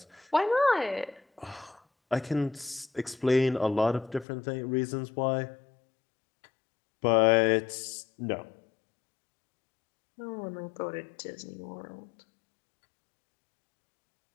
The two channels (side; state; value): right; drops out; at 4.2 s